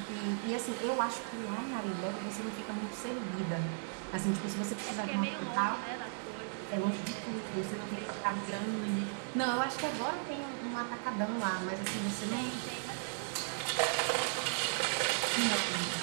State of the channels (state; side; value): silent; left; digital silence